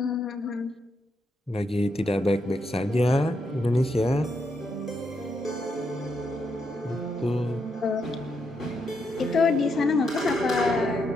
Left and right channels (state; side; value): normal; both; correlation 0.80